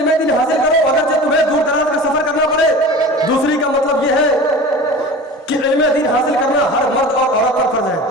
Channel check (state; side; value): normal; both; correlation 0.36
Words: दीन हासिल करो अगर तुम्हें दूर दराज का सफर करना पड़े। दूसरी का मतलब ये है कि इल्म दीन हासिल करना हर मर्द और औरत पर फर्ज है।